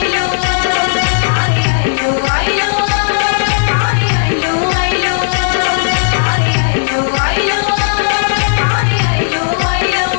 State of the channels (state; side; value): silent; right; digital silence